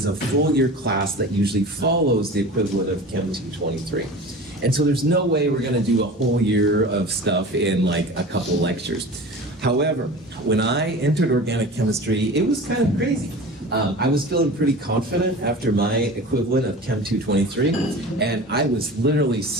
a full year class that usually follows the equivalent of Chem 223. And so there's no way we're going to do a whole year of stuff in like a couple lectures. However, when I entered organic chemistry, it was kind of crazy. I was feeling pretty confident after my equivalent of Chem 223, and I was literally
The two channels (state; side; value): normal; both; correlation 0.36